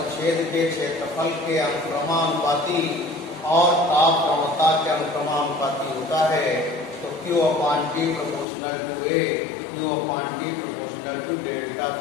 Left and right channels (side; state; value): right; drops out; at 8.5 s